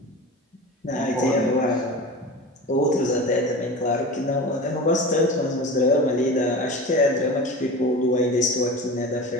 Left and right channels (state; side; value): normal; both; correlation 0.32